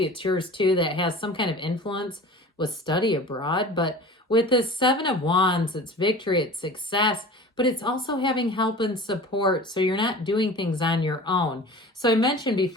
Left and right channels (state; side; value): normal; both; correlation 0.39